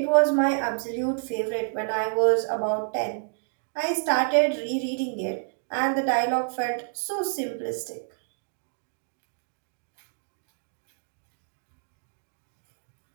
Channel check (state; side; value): silent; left; digital silence